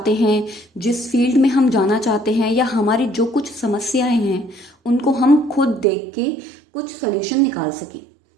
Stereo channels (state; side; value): drops out; left; at 5.9 s